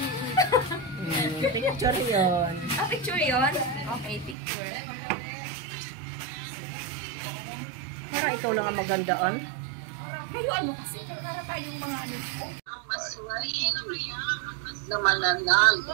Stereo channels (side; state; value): left; drops out; at 4.4 s